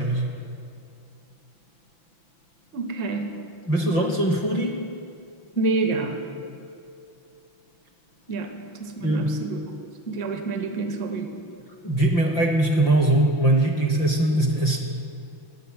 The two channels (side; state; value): right; late; 5.8 ms